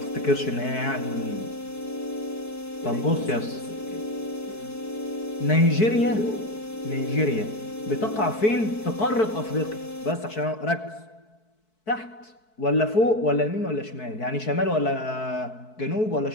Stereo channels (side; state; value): right; late; 4.6 ms